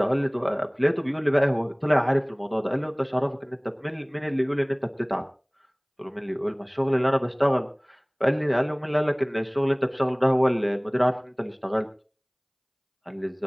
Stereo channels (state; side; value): identical; both; correlation 1.00